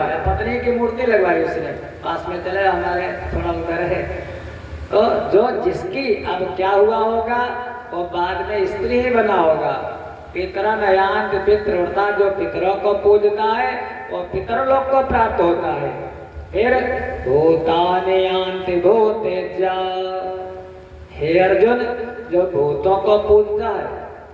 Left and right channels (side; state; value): both; identical; correlation 1.00